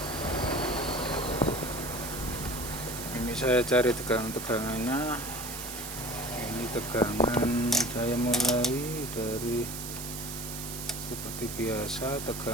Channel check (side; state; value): right; noise; hiss, 7 dB below the sound